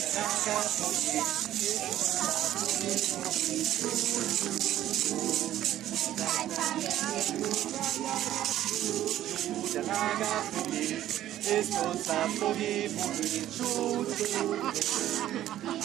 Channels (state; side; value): quieter; left; 12.8 dB